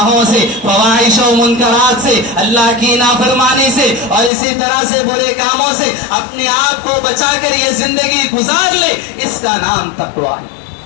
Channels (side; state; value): right; drops out; at 4.3 s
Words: سے, فواحش و منکرات سے, اللہ کی نافرمانی سے, اور اسی طرح سے برے کاموں سے اپنے آپ کو بچا کر یہ زندگی گزار لے. اس کا نام تقویٰ